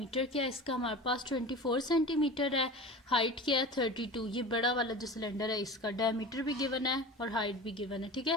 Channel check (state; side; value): normal; both; correlation 0.33